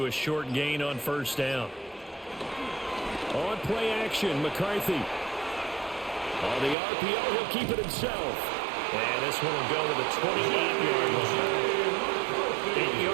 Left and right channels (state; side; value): drops out; left; at 6.8 s